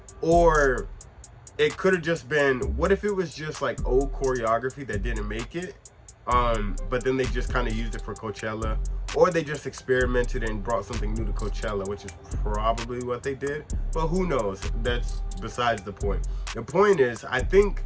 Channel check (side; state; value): both; identical; correlation 1.00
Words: or it could have just been, what if it was just like old choreography that didn't make it, but then they just kind of used it for Coachella, or they just experimented and brought something new to Coachella, which is probably what they did, but who knows? That's besides the point. The point is, I think